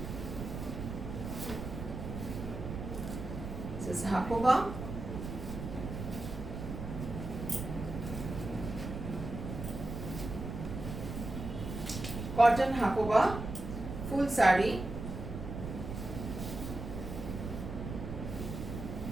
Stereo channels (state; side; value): noise; right; rumble, 6 dB below the sound